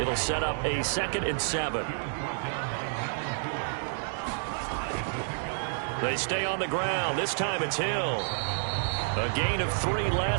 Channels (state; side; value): silent; left; digital silence